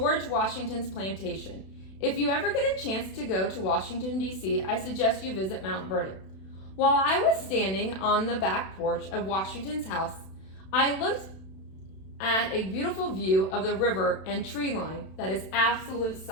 Washington's plantation. If you ever get a chance to go to Washington, D.C., I suggest you visit Mount Vernon. While I was standing on the back porch of Washington's house, I looked at a beautiful view of the river and tree line that is absolute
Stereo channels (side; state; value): right; late; 32 ms